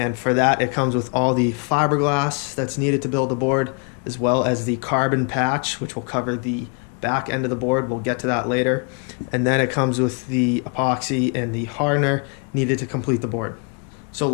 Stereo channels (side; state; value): right; quieter; 37.7 dB